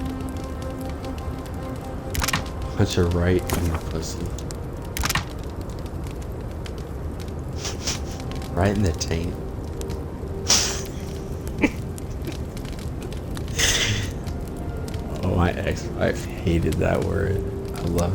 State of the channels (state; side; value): identical; both; correlation 1.00